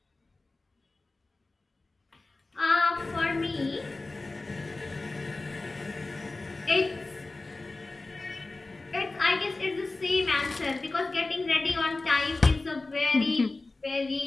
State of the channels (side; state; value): right; quieter; 3.3 dB